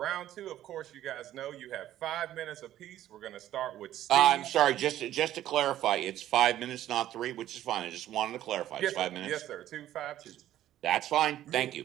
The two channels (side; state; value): left; quieter; 12.7 dB